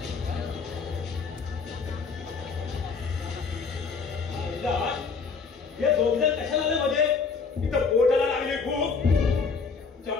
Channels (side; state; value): right; quieter; 5.1 dB